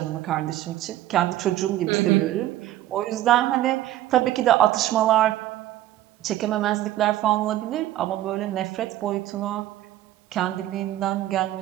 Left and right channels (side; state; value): left; quieter; 14.1 dB